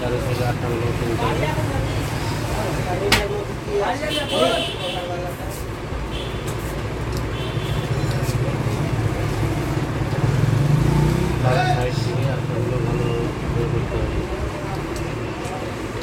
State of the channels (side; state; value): both; identical; correlation 1.00